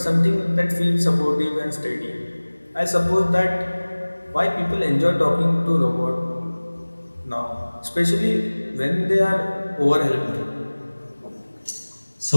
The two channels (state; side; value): inverted; both; correlation -1.00